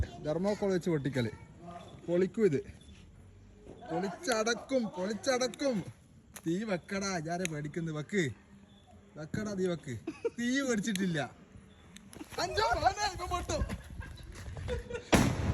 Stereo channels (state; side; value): identical; both; correlation 1.00